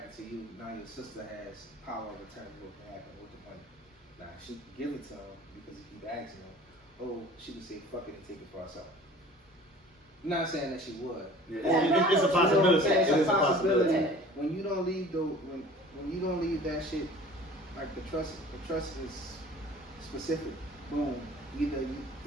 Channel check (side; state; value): both; normal; correlation 0.46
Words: to you, now your sister has power of attorney what can happen with the money. Now she can give it to him because he keep asking him. Oh, she can say fuck it and take it for herself. I'm not saying that she would. Yeah. It's a possibility. It's a possibility. When you don't leave when you don't leave that shit, like the trust is specific. Boom. Either